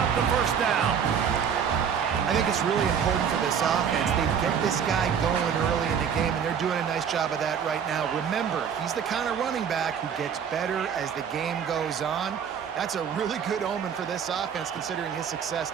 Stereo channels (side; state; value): left; quieter; 7.6 dB